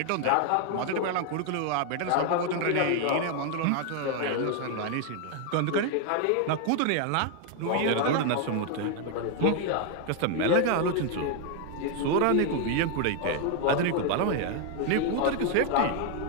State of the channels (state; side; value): different; both; correlation 0.00